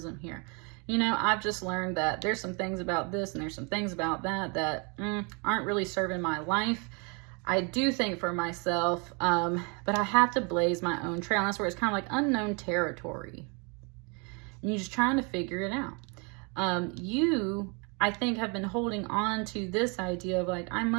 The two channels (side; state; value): left; quieter; 32.9 dB